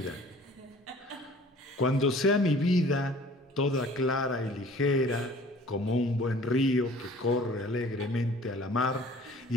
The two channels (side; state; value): both; normal; correlation 0.50